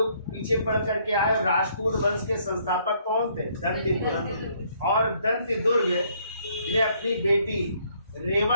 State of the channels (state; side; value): inverted; both; correlation -0.66